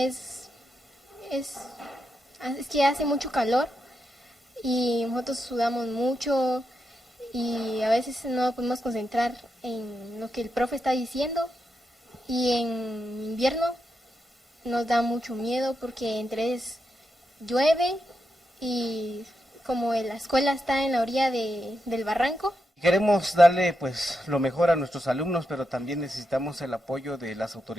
que hace mucho calor y nosotros sudamos mucho y a veces no podemos concentrar en lo que el profe está diciendo, y en invierno nos da mucho miedo porque llueve y como la escuela está en la orilla del barranco. Queremos darle pues lo mejor a nuestros alumnos, pero también necesitamos el apoyo de las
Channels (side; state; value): both; normal; correlation 0.85